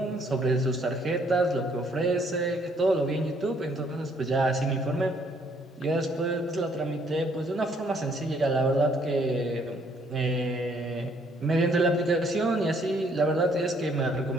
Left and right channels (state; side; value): normal; both; correlation 0.66